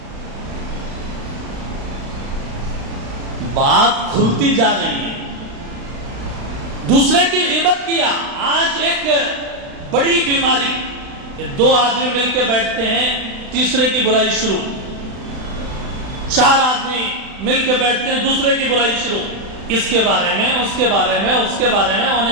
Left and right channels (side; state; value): left; late; 36 ms